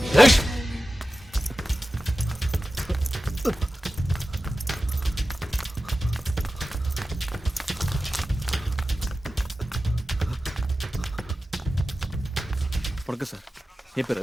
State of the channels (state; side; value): normal; both; correlation 0.94